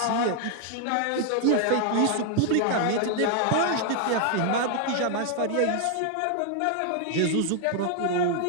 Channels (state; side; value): different; both; correlation 0.00